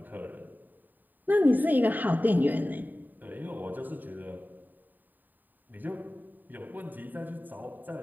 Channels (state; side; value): late; left; 0.088 ms